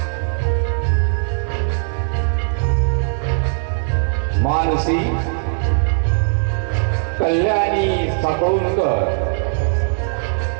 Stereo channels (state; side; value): silent; left; 66 dB below the other